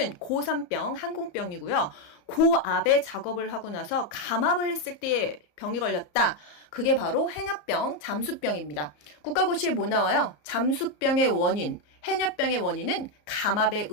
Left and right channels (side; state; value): right; late; 34 ms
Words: 고산병, 항공병이고요. 고압에 작업을 하고 나서 감압을 했을 때 병이 걸렸다. 그게 바로 해녀병, 잠수병입니다. 국가고시에 뭐 나와요? 잠수병의 원인, 해녀병의 원인은 감압에